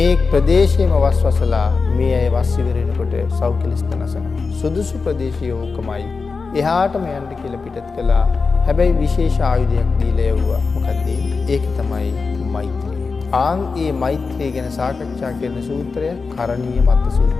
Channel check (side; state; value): right; quieter; 4.5 dB